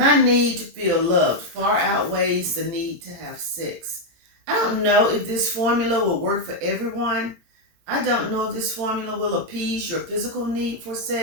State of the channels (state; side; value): late; left; 17 ms